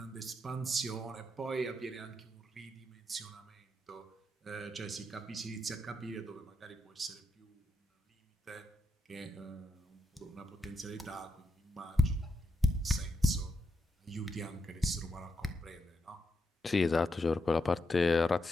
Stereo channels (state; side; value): normal; both; correlation 0.83